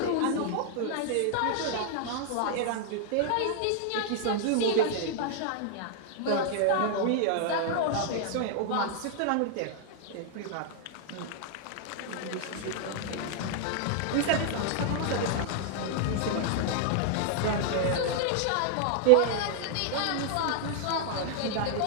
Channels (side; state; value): both; different; correlation 0.00